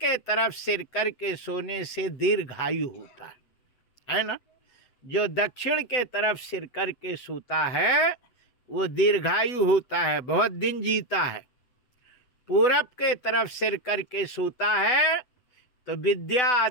तरफ सिर करके सोने से दीर्घायु होता है ना। जो दक्षिण के तरफ सिर करके सोता है वो दीर्घायु होता है, बहुत दिन जीता है। पूरब के तरफ सिर करके सोता है तो विद्या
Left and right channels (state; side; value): late; right; 8.0 ms